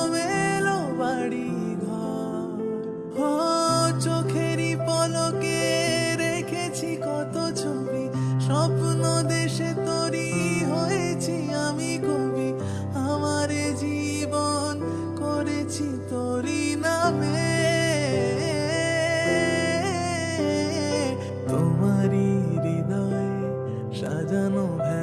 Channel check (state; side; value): identical; both; correlation 1.00